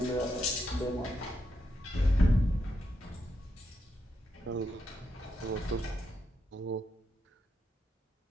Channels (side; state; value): both; normal; correlation 0.82